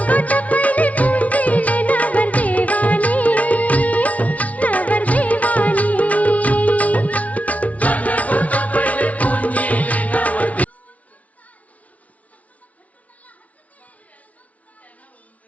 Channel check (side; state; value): right; late; 0.068 ms